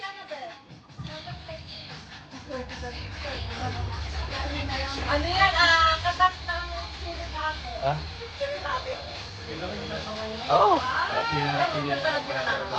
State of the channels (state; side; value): identical; both; correlation 1.00